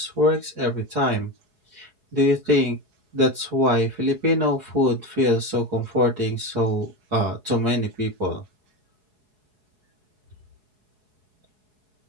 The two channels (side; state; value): left; late; 4.7 ms